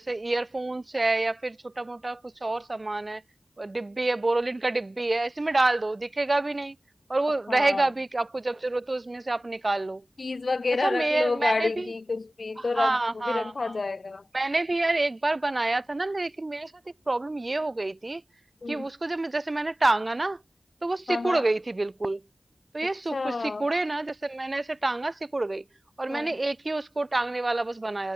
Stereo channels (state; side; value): normal; both; correlation 0.98